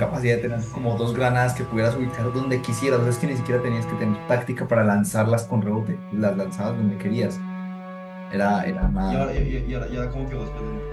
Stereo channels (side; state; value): both; identical; correlation 1.00